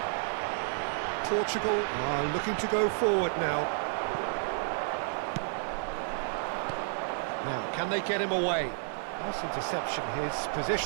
Portugal are looking to go forward now. Now, can they get him away? Nice interception, his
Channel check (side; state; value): left; silent; digital silence